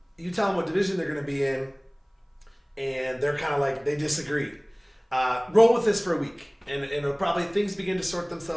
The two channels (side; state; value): both; identical; correlation 1.00